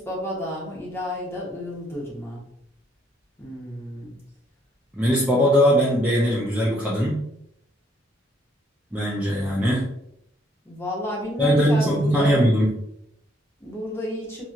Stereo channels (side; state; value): both; normal; correlation 0.68